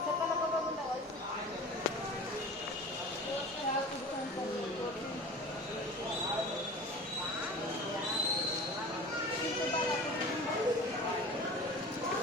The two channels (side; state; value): both; normal; correlation 0.39